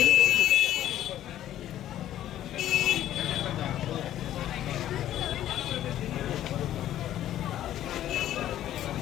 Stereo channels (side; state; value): right; quieter; 12.3 dB